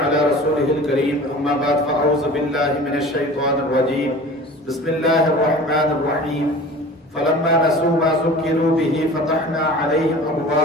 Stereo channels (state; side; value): normal; both; correlation 0.40